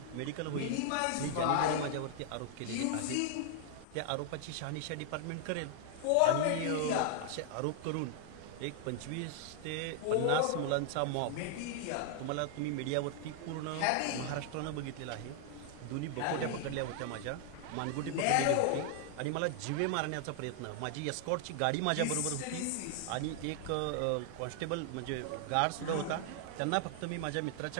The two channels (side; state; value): both; different; correlation 0.00